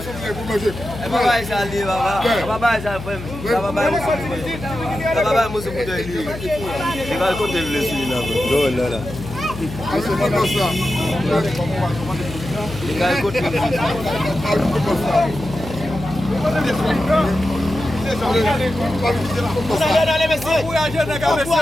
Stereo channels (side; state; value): left; noise; hum, 11 dB below the sound